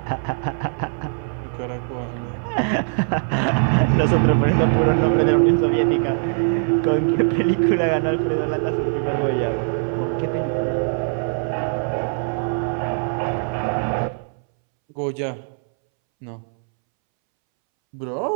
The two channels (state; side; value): silent; left; 65 dB below the other